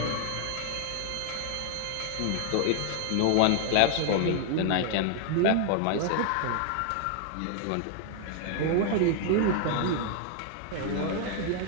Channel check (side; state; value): both; different; correlation 0.00